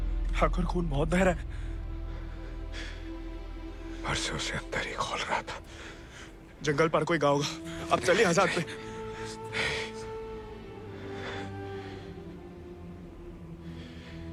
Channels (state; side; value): identical; both; correlation 1.00